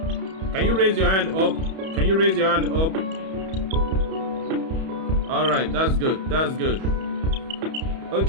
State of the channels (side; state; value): left; late; 31 ms